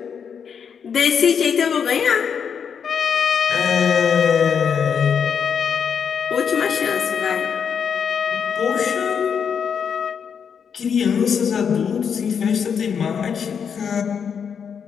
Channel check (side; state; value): right; quieter; 7.1 dB